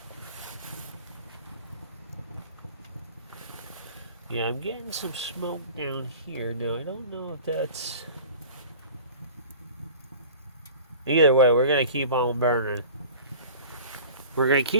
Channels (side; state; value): both; inverted; correlation -0.42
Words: Yeah, I'm getting some smoke down here. Now, I don't know if that's... Either way, we're going to keep on burning. We're going to